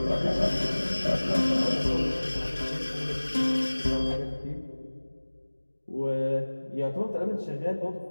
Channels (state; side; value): inverted; both; correlation -1.00